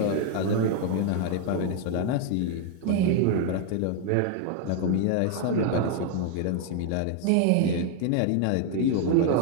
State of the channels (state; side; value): different; both; correlation 0.00